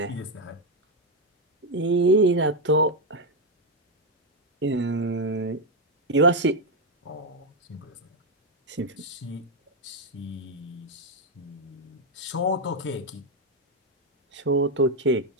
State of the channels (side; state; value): both; normal; correlation 0.04